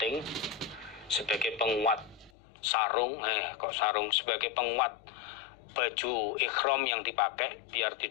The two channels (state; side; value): drops out; right; at 2.3 s